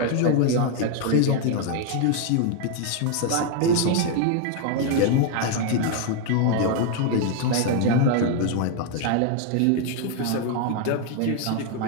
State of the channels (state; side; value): different; both; correlation 0.00